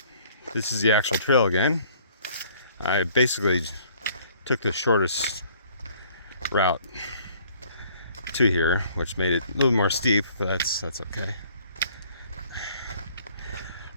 this is the actual trail again. I basically took the shortest route to here, which made it a little more steep, but that's okay.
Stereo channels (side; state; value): both; inverted; correlation -0.58